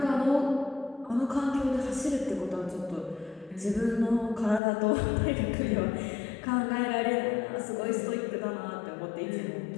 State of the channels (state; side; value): drops out; right; at 4.6 s